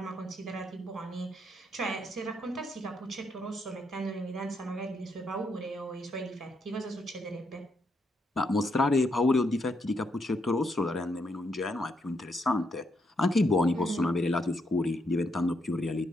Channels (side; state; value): both; normal; correlation 0.78